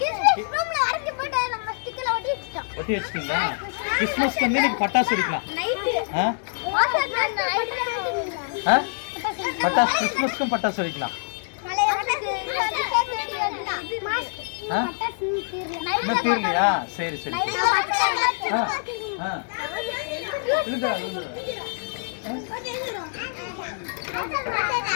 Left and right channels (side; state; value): right; silent; digital silence